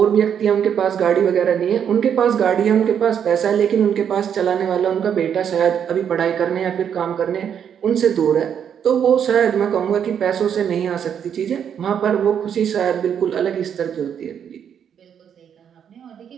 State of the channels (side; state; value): left; quieter; 8.3 dB